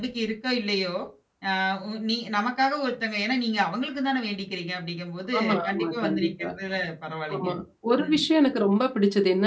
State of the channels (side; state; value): both; identical; correlation 1.00